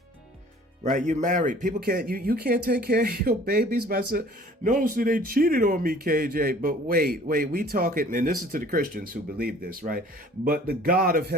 Right, you're married. People can't you can't take care of your babies by saying, no, so they cheated on me, KJ. But wait, we talking, and this is to the Christians who believe this, right? But the God of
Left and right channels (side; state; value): both; normal; correlation 0.51